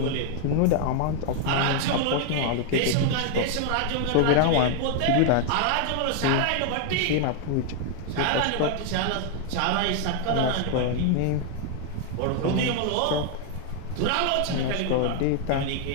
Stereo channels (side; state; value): both; different; correlation 0.00